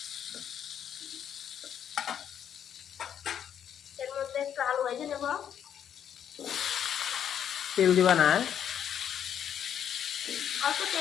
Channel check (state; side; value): quieter; right; 9.1 dB